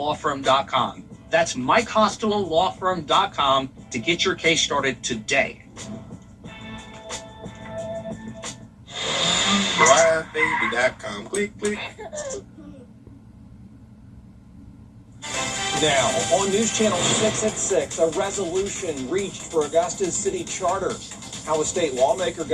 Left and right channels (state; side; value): identical; both; correlation 1.00